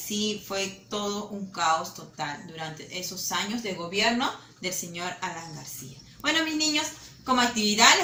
fue todo un caos total durante esos años de gobierno del señor Alan García. Bueno, mis niños, como actividad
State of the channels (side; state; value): both; identical; correlation 1.00